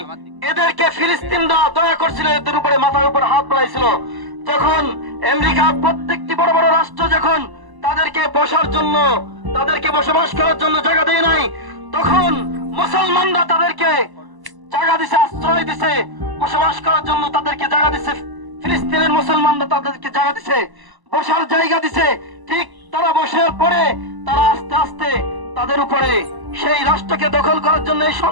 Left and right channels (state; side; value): late; left; 1.0 ms